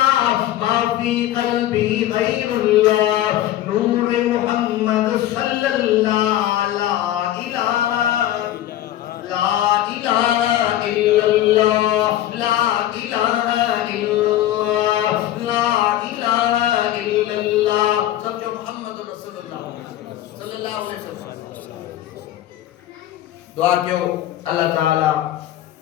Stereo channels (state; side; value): quieter; right; 13.2 dB